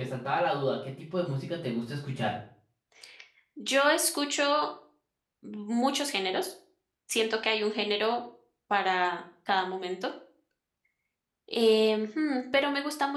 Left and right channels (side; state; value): both; identical; correlation 1.00